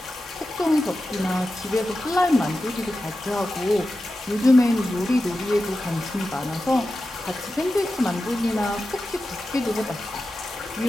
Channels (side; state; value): both; normal; correlation 0.92